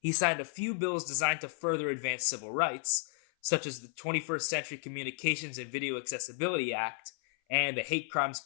signed a few bills designed to further advance civil rights, such as the 21st Century Communications and Video Accessibility Act and the Hate Crimes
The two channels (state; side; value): silent; right; 56 dB below the other